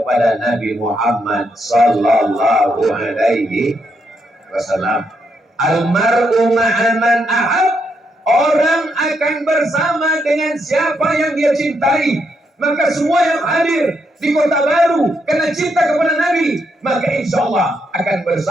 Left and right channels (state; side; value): normal; both; correlation 0.78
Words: Nabi Muhammad sallallahu alaihi wasallam. Almar'u ma'aman ahab. Orang akan bersama dengan siapa yang dia cintai. Maka semua yang hadir di Kota Baru karena cinta kepada Nabi, maka insya Allah akan